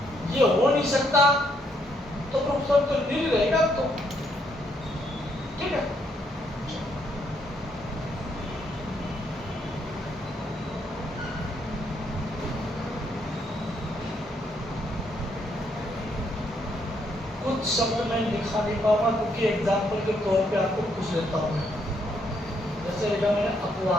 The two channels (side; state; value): both; normal; correlation 0.73